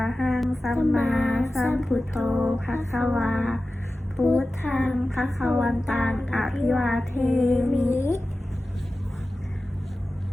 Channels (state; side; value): normal; both; correlation 0.95